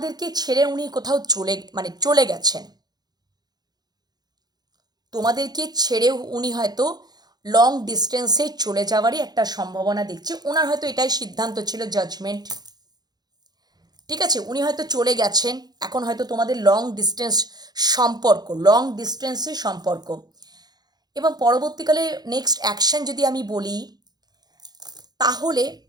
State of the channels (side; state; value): left; late; 0.19 ms